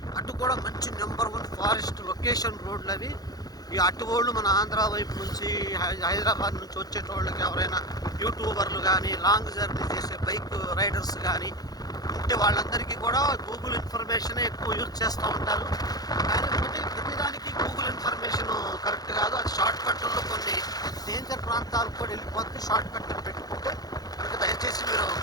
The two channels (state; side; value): late; right; 0.19 ms